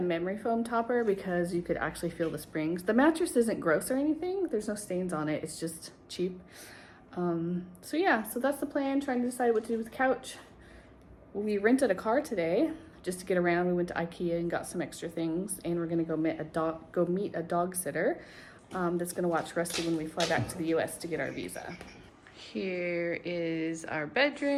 memory foam topper, because you could actually feel the springs. The mattress isn't gross or anything. There's no stains on it. It's just cheap. So yeah, so that's the plan, trying to decide what to do with the couch. We rented a car today just to get around. We went to IKEA and got some extra things, and we're gonna go meet a dog sitter that's gonna watch Rusty when we fly back to the US to get our visa. Here is our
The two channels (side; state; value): both; identical; correlation 1.00